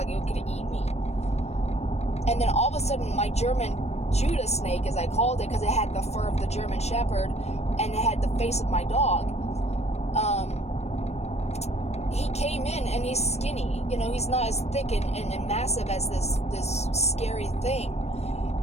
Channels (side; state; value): right; late; 0.31 ms